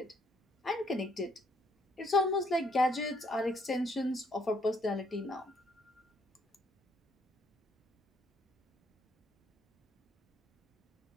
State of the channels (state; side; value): normal; both; correlation 0.69